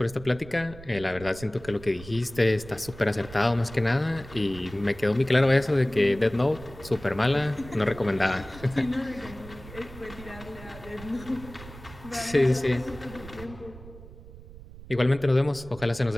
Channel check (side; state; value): right; noise; rumble, 16 dB below the sound